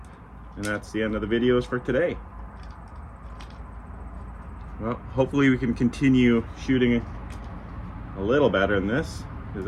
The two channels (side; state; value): both; identical; correlation 1.00